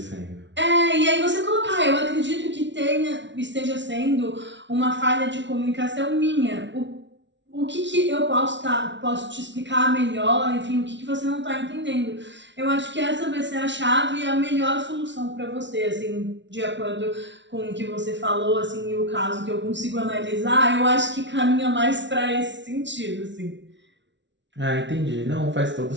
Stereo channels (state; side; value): late; left; 0.53 ms